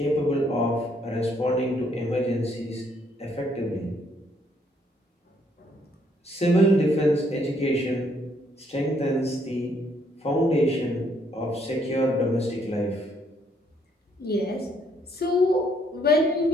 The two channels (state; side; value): normal; both; correlation 0.68